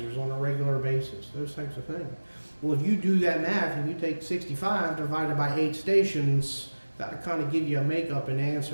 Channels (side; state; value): both; inverted; correlation -1.00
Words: on a regular basis, those types of things. Well, if you do that math and you take 65 divided by 8 stations, that'll kind of give you a makeup and